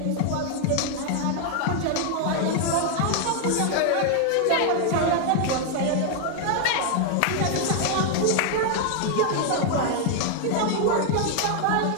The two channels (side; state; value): both; different; correlation 0.00